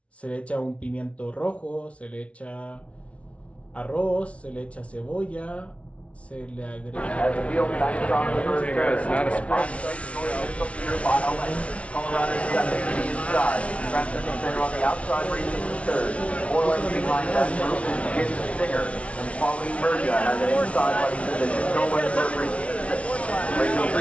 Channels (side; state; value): right; late; 0.063 ms